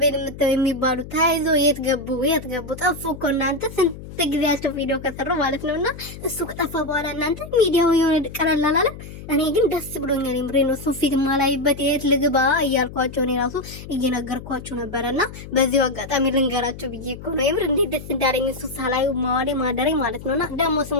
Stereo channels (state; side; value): noise; left; hum, 13 dB below the sound